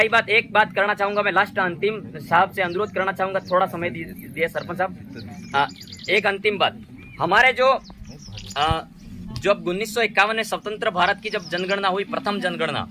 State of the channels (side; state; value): both; identical; correlation 1.00